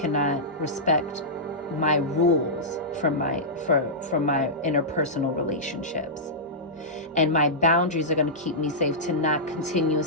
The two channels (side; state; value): both; normal; correlation -0.14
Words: respect my rules for my interpersonal relationships. And my boundaries are going to keep me safe to not